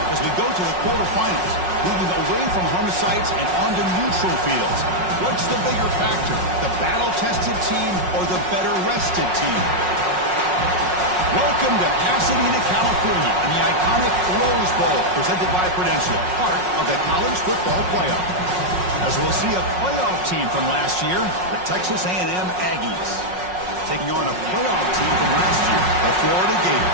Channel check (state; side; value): late; left; 5.5 ms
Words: as we go to the quarterfinals, moving away from home sites and onto neutral fields. What's the bigger factor, the battle-tested team or the better-rested team? Welcome to Pasadena, California, in the iconic Rose Bowl, presented by Prudential, part of the college football playoff. As we'll see a playoff team from last year, the Texas A&M Aggies, taking on a playoff team from last year, the Florida